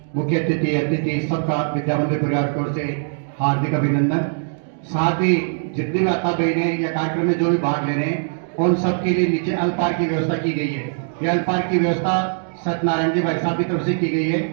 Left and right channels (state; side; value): silent; left; digital silence